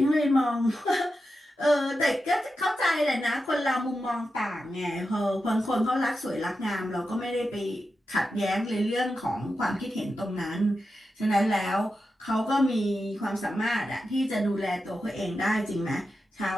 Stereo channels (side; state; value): both; normal; correlation 0.90